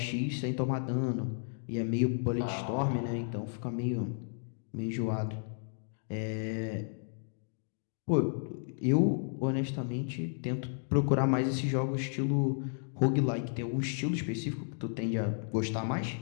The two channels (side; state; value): right; silent; digital silence